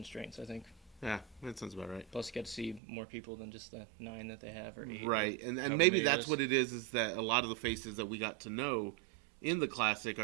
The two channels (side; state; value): left; drops out; at 2.8 s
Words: I think. Yeah, that sounds about right. Plus, you get to see more people than just the 9 that they have or 8. Right, and maybe that's what it is that a lot of the faces that we got to know in the Classic